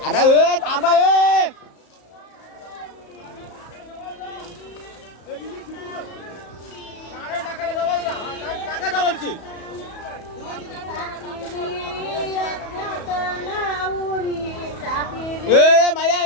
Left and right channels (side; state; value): right; late; 34 ms